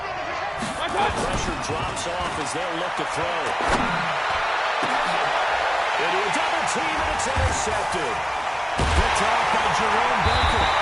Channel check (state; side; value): identical; both; correlation 1.00